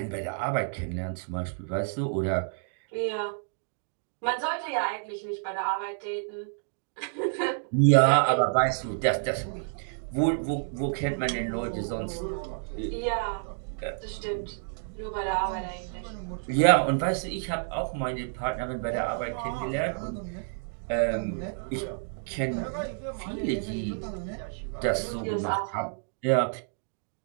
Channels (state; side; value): silent; left; digital silence